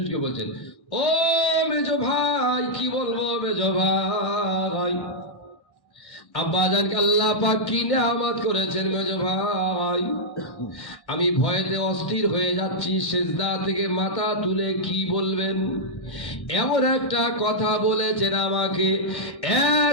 বলছেন, ও মেজো ভাই, কি বলবো মেজো ভাই, আব্বাজানকে আল্লাহ পাক কি নিয়ামত করেছেন মেজো ভাই। আমি ভয়েতে অস্থির হয়ে যাচ্ছি, সিজদা থেকে মাথা তুলে কি বলবেন? এমন একটা কথা বলেছেন আমাকে,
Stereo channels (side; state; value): right; late; 1.1 ms